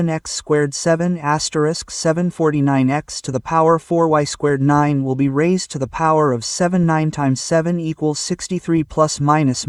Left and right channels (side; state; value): both; identical; correlation 1.00